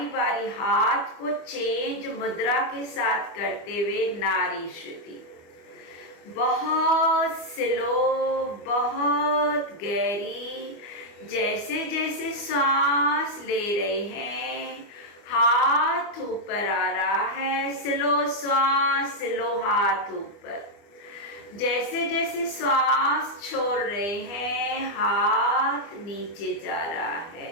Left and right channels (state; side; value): late; right; 25 ms